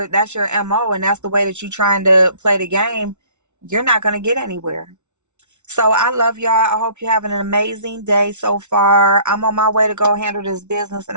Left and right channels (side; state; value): left; late; 0.83 ms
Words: MO and that's the way that you're trying to play the game, you're not going to get anywhere. So I love y'all. I hope you're having an amazing day so far. I'm on my way to go handle this business,